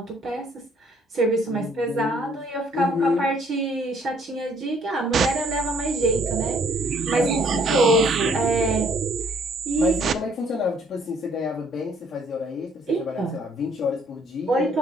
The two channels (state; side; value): normal; both; correlation 0.63